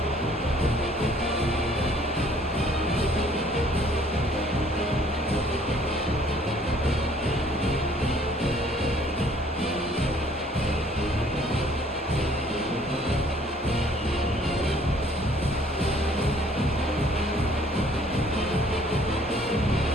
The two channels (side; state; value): both; normal; correlation 0.59